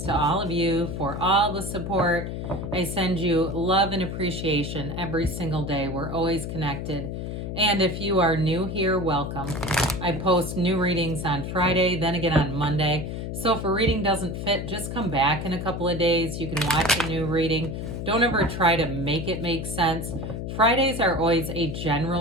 to all of you for all the support. I send you love and appreciation every single day. We're always connected. And if you are new here, welcome. I post new readings on Friday, then again on Monday. So if a reading doesn't fit, just come back in a couple of days. You can watch a new reading. Don't ever try to make it make sense. Fridays are always a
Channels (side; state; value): left; noise; hum, 5 dB below the sound